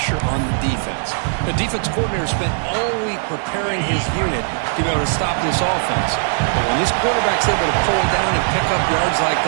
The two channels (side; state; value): left; silent; digital silence